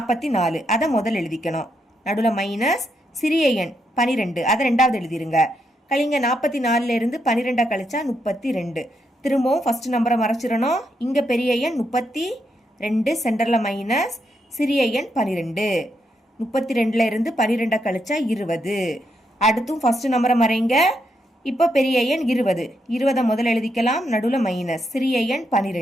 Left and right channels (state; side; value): normal; both; correlation 0.80